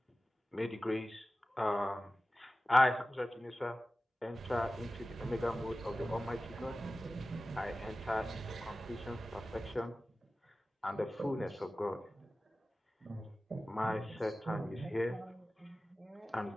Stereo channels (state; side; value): normal; both; correlation 0.96